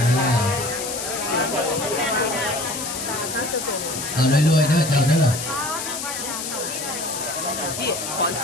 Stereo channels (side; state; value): left; noise; hiss, 5 dB below the sound